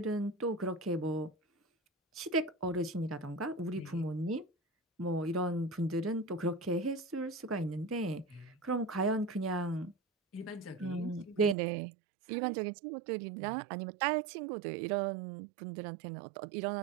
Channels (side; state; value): left; drops out; at 11.6 s